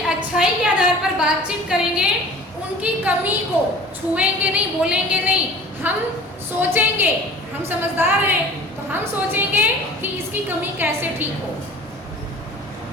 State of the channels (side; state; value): both; normal; correlation 0.43